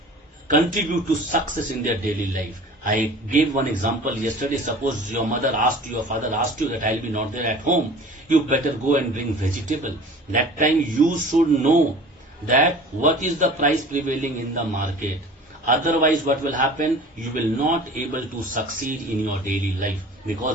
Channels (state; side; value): normal; both; correlation 0.42